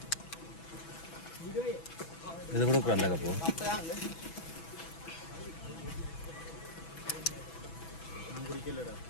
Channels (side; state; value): right; late; 6.1 ms